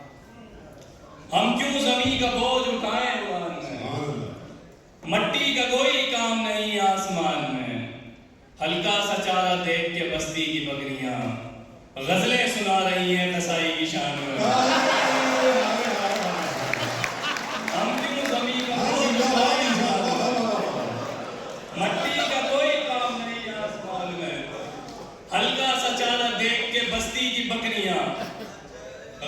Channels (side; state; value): both; identical; correlation 1.00